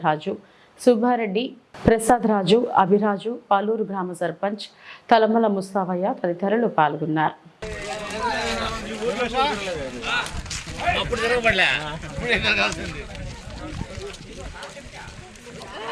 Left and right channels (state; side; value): identical; both; correlation 1.00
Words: రాజు, సుబ్బారెడ్డి, ప్రసాద్ రాజు, అభిరాజు, పాలూరు గ్రామ సర్పంచ్ తలమల ముస్తావయ్య తదితరులు పాల్గొన్నారు.